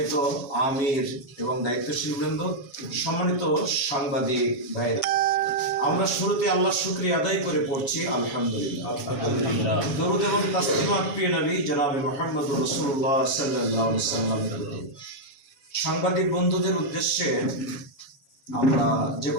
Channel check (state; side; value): late; right; 7.2 ms